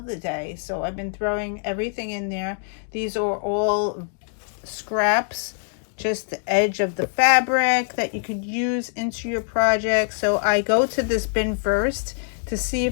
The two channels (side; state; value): right; silent; digital silence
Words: day. So I've been throwing everything in there. These are all scraps, just the edge of the fabric that you could use into your project. So I go to this bin first to see